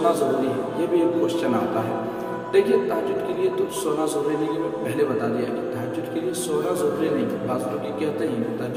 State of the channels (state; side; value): identical; both; correlation 1.00